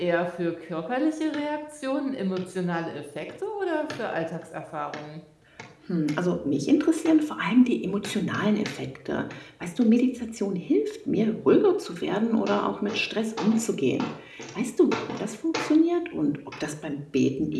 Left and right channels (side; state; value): both; identical; correlation 1.00